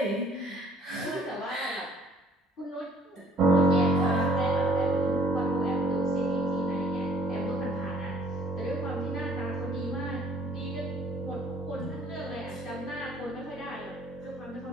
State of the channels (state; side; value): normal; both; correlation 0.59